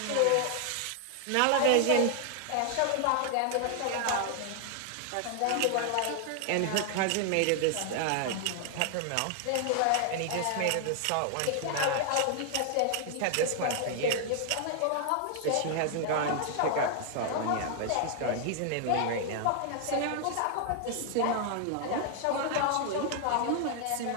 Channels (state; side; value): different; both; correlation 0.00